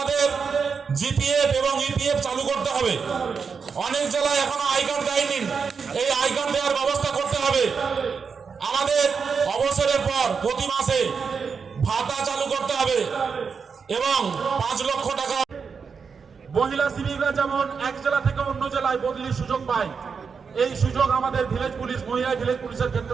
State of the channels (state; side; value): quieter; left; 5.7 dB